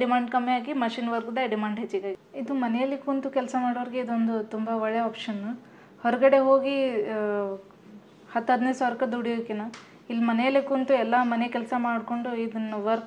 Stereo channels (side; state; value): both; identical; correlation 1.00